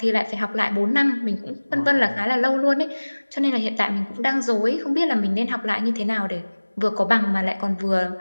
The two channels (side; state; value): both; inverted; correlation -1.00